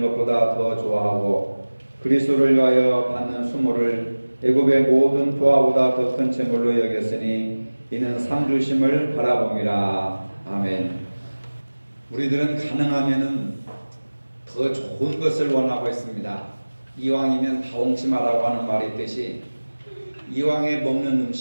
것보다 더 좋아하고 그리스도를 위하여 받는 수모를 애굽의 모든 부하보다 더 큰 채물로 여겼으니 이는 상주심을 바라봅니다. 아멘. 우리들은 가능하면은 더 좋은 것을 원하고 있습니다. 이왕이면 다홍치마라고 하는 말이 있듯이 이왕에 먹는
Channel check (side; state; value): both; inverted; correlation -1.00